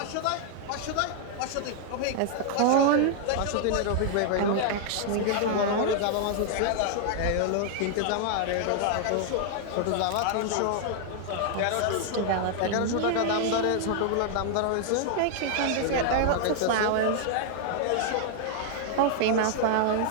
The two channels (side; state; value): both; different; correlation 0.00